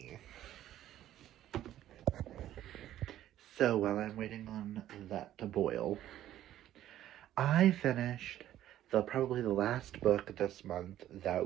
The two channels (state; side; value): quieter; left; 12.6 dB